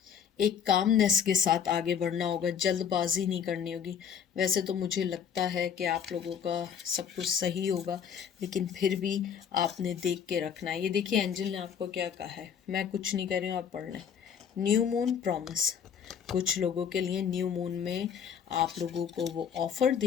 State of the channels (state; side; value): quieter; right; 7.8 dB